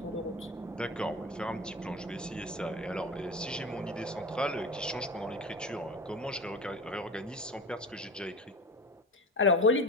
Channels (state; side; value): normal; both; correlation 0.32